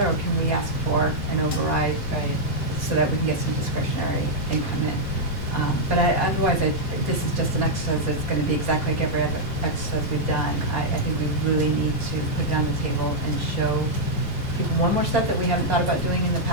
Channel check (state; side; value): normal; both; correlation -0.04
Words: or can we ask for an override so that we can get some discretionary income in? But otherwise, this is just an exercise that's going to be exactly like every other exercise we've done. I think we really need to put it on the table and show people one more step that we haven't thought about doing in the